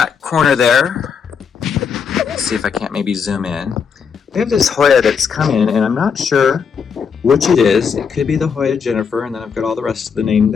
corner there, let's see if I can't maybe zoom in. We have this Hoya that's come in, and I'm not sure which it is. It could be the Hoya Jennifer, and then I've got all the rest of the name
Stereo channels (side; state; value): right; quieter; 6.4 dB